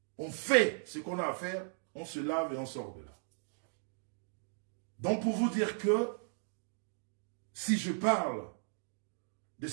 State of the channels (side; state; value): left; silent; digital silence